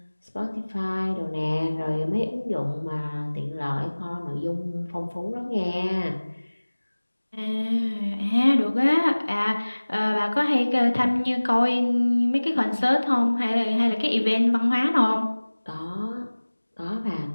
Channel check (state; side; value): inverted; both; correlation -1.00